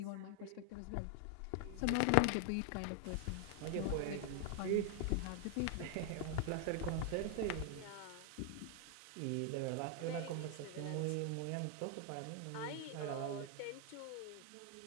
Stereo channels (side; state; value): both; different; correlation 0.00